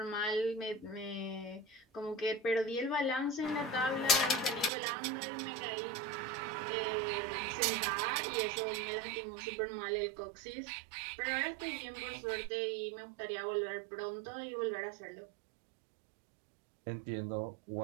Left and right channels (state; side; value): drops out; left; at 4.7 s